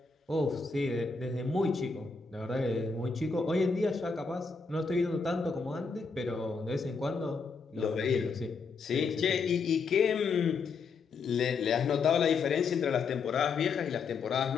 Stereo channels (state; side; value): quieter; right; 4.9 dB